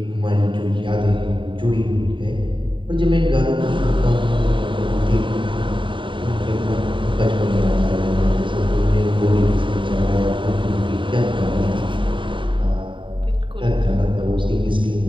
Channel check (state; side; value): late; left; 0.24 ms